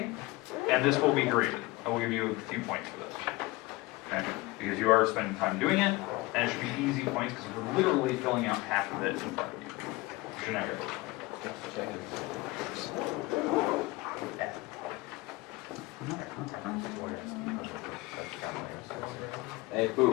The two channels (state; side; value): quieter; right; 21.2 dB